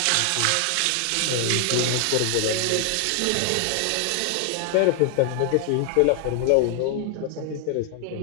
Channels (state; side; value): different; both; correlation 0.00